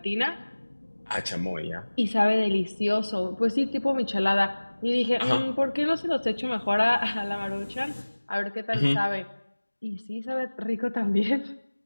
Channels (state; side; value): inverted; both; correlation -1.00